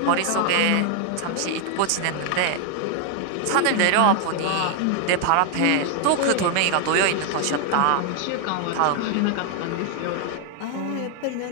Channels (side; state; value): both; different; correlation 0.00